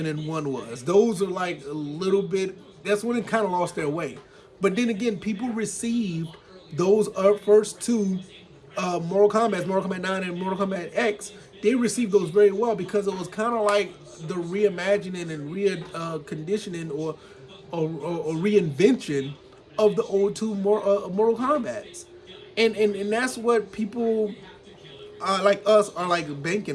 and 1 was. Those are like a little bit, that's when it kind of lost their way. But then again, people received those first two Mortal Kombat 9 and Mortal Kombat X, they received those very well, because it was kind of like the reimagining and reconditioning or reinvention of the old two Mortal Kombats. And that's what people like us are like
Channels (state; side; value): identical; both; correlation 1.00